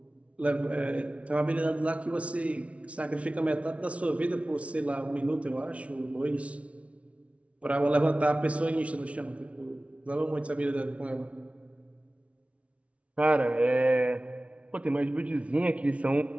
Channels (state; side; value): late; left; 0.063 ms